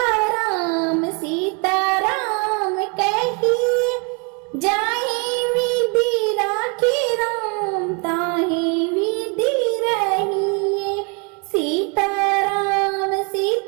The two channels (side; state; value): left; quieter; 34.0 dB